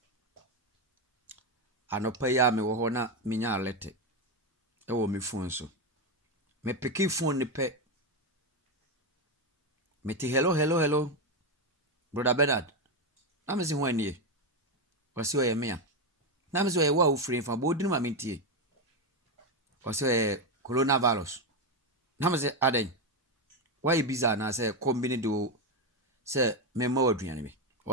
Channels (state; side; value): normal; both; correlation 0.09